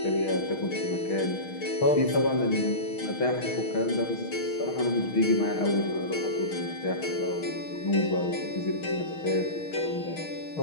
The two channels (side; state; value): right; late; 6.4 ms